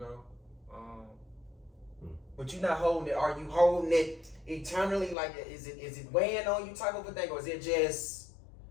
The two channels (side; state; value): right; drops out; at 5.2 s